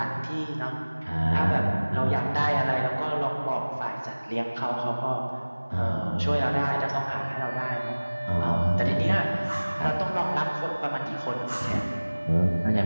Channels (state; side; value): inverted; both; correlation -1.00